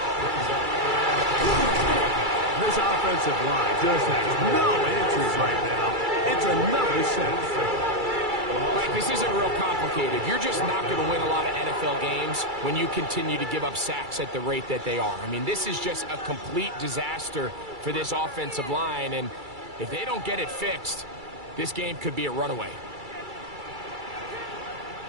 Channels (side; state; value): left; late; 2.3 ms